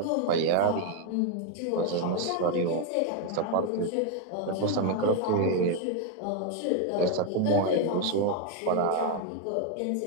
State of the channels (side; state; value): both; different; correlation 0.01